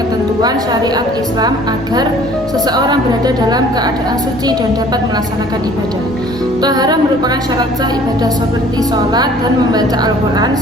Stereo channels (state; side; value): normal; both; correlation 0.52